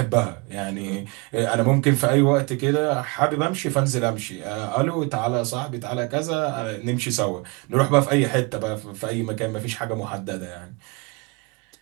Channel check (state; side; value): quieter; left; 28.3 dB